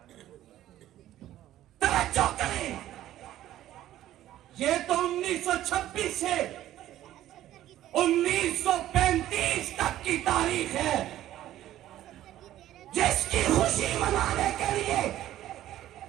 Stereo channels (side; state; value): left; quieter; 13.3 dB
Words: توجہ کریں، یہ تو 1926 سے 1935 تک کی تاریخ ہے، جس کی خوشی منانے کے لیے